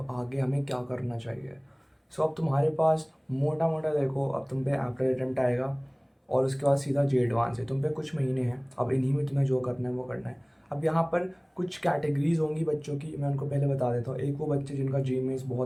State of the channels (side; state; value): both; identical; correlation 1.00